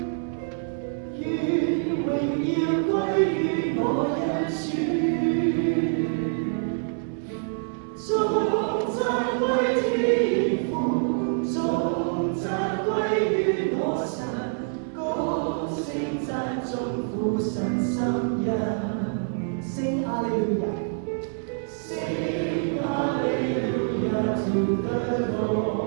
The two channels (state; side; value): silent; left; digital silence